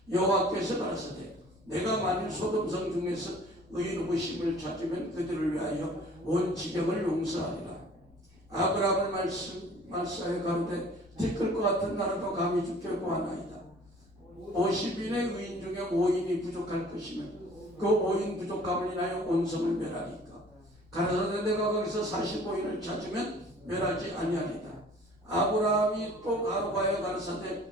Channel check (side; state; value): left; noise; rumble, 28 dB below the sound